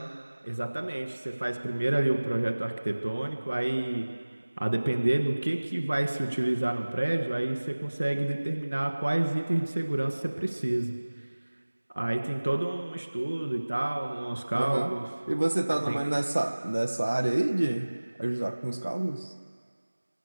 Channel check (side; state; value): both; inverted; correlation -1.00